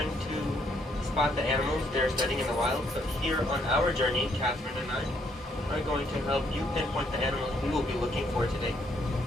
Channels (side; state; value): both; normal; correlation 0.70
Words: to spot the animals they're studying in the wild, but here on our journey, Catherine and I are going to help you pinpoint the animals we will be looking for today.